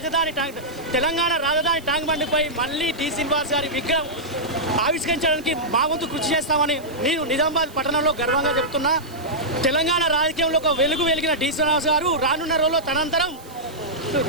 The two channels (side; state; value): right; noise; hiss, 22 dB below the sound